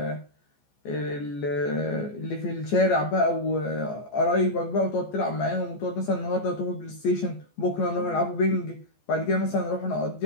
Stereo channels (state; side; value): late; right; 14 ms